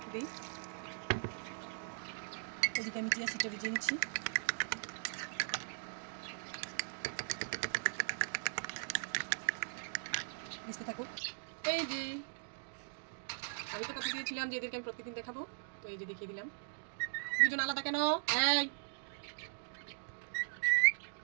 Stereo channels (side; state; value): left; silent; digital silence